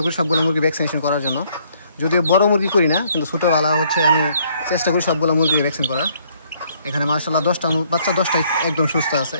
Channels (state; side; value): inverted; both; correlation -0.65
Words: করি সবগুলো মুরগি ভ্যাকসিনেশন করার জন্য। যদিও বড় মুরগি করি না, কিন্তু ছোটোবেলা হচ্ছে আমি চেষ্টা করি সবগুলো মুরগি ভ্যাকসিন করার। এখানে মার্শাল্লাহ 10টা বাচ্চা, 10টাই একদম সুস্থ আছে।